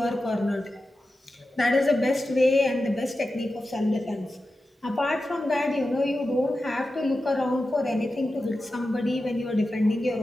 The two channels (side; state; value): both; normal; correlation 0.92